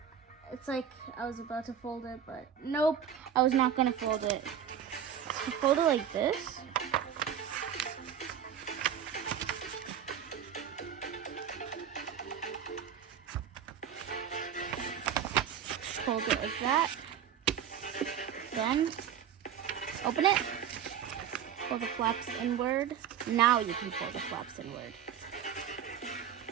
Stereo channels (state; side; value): quieter; left; 8.8 dB